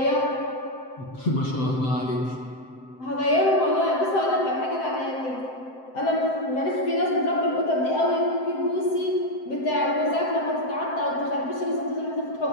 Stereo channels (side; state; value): right; late; 7.7 ms